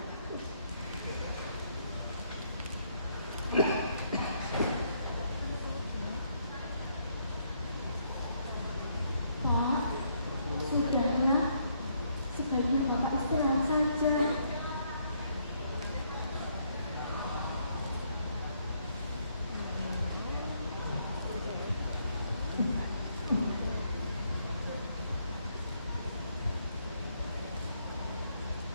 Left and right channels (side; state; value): both; inverted; correlation -0.72